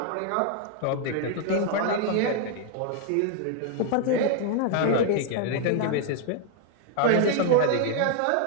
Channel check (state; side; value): different; both; correlation 0.00